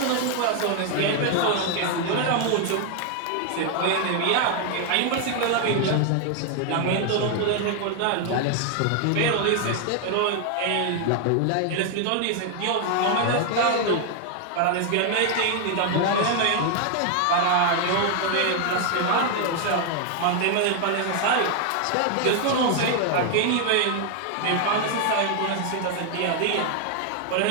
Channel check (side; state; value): both; different; correlation 0.00